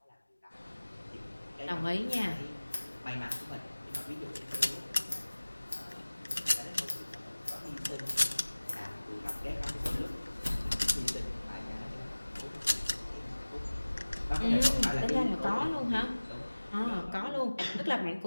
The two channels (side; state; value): both; inverted; correlation -1.00